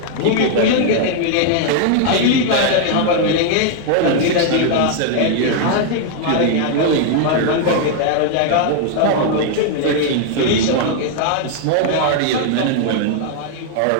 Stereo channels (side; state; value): both; different; correlation 0.00